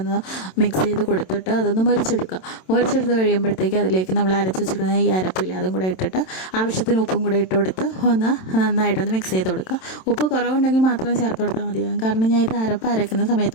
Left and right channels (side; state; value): right; late; 27 ms